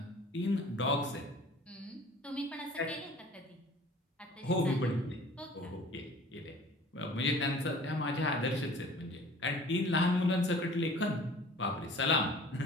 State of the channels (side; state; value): both; normal; correlation 0.47